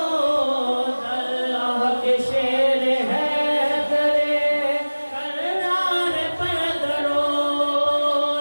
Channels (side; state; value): both; inverted; correlation -1.00